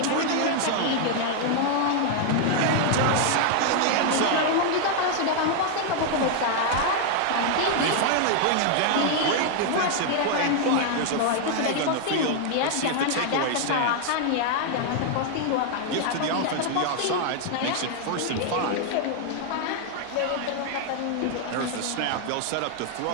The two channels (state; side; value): different; both; correlation 0.00